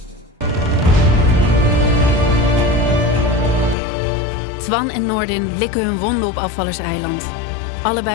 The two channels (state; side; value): drops out; right; at 3.8 s